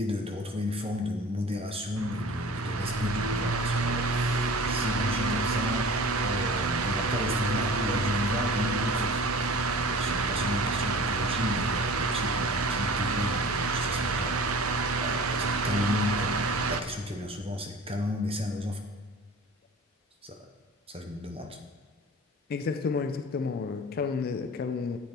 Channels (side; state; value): both; normal; correlation 0.41